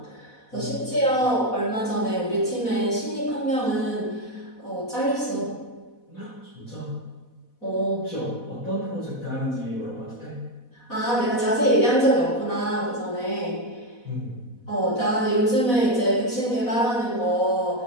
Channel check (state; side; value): late; right; 4.1 ms